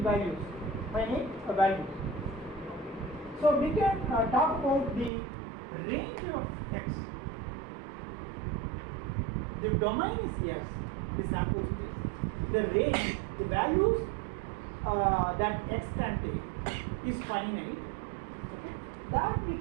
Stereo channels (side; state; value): left; drops out; at 5.1 s